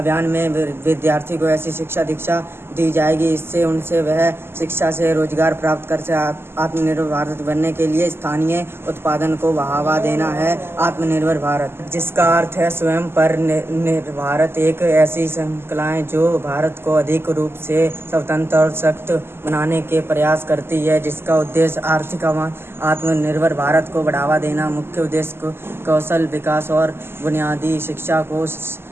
में विद्यार्थी को ऐसी शिक्षा दीक्षा दी जाएगी इससे उनसे वह शिक्षा से रोजगार प्राप्त कर आत्मनिर्भर भारत बनने के लिए स्थानीय उत्पादन को बढ़ावा देना है। आत्मनिर्भर भारत, जिसका अर्थ है स्वयं पर निर्भर एक ऐसी श्रृंखलाएं जो भारत को अधिक रूप से स्वतंत्र और सशक्त बनाने के प्रयास करती है, जिसका उद्देश्य आर्थिक आत्मनिर्भर भारत को बढ़ावा देना। मुख्य उद्देश्य कौशल विकास और बुनियादी शिक्षा को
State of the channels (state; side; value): late; left; 0.12 ms